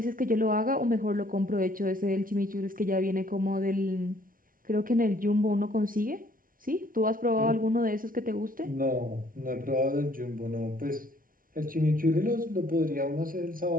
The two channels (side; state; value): left; late; 0.41 ms